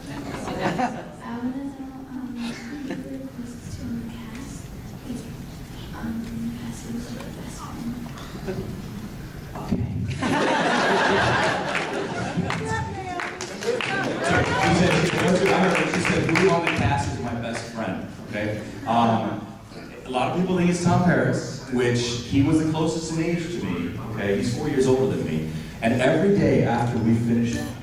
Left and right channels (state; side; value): identical; both; correlation 1.00